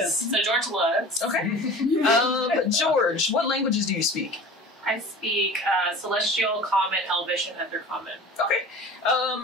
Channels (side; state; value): both; normal; correlation 0.39